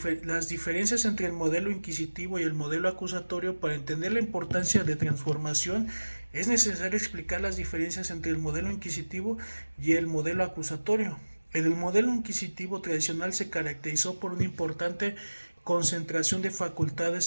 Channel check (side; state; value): both; inverted; correlation -1.00